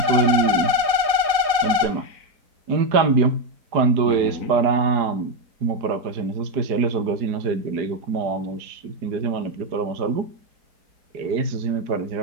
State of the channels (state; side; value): late; left; 4.9 ms